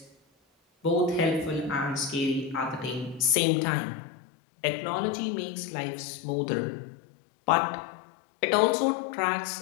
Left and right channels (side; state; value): right; drops out; at 3.4 s